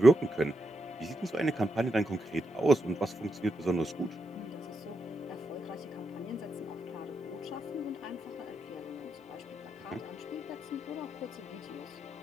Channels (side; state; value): both; normal; correlation 0.84